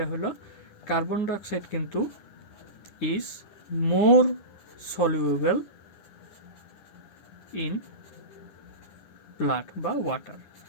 হলো কার্বন ডাইঅক্সাইড কিন্তু is more soluble in blood বা ওয়াটার।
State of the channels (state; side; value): late; right; 10 ms